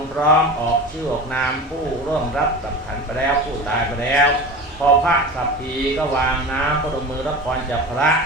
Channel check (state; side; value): normal; both; correlation 0.32